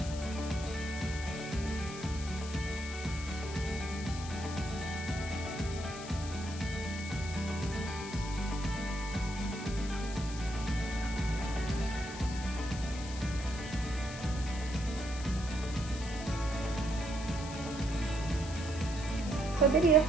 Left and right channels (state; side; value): noise; left; hiss, 12 dB below the sound